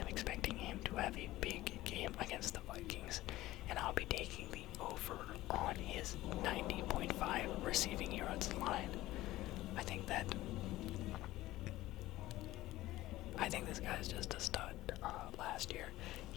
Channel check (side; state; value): right; quieter; 16.6 dB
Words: expecting him to have a big game against the Vikings, and I'll be taking the over on his 90.5 receiving yards line. I think this guy's just a stud. Last year,